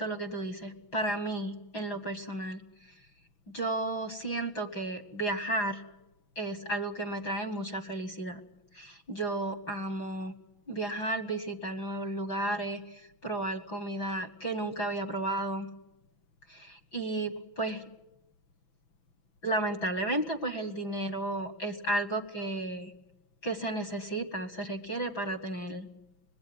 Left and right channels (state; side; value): late; right; 6.0 ms